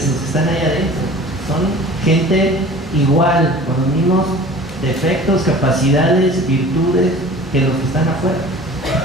los que están ahí adentro. Son gente igual, con los mismos defectos, capacidades, virtudes que los que están afuera.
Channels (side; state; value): both; normal; correlation 0.43